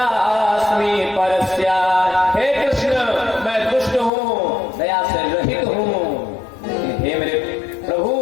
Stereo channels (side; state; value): right; drops out; at 4.1 s